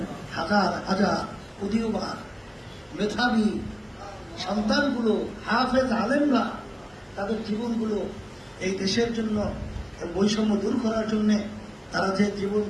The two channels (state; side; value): identical; both; correlation 1.00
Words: হাজার হাজার উদীয়মান মেধাবী সন্তানগুলো, হাফেজ আলেমরা তাদের জীবনগুলো এই দেশের জন্য, বৈষম্য দূর করার জন্য তারা যে জীবন